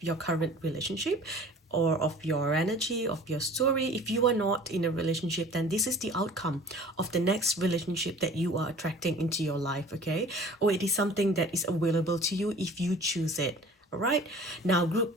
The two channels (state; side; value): normal; both; correlation 0.45